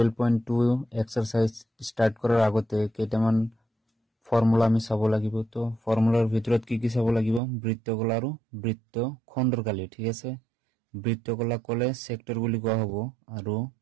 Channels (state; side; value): drops out; left; at 7.4 s